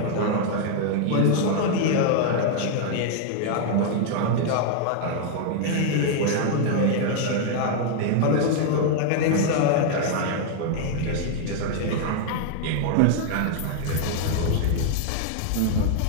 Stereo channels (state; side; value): different; both; correlation 0.00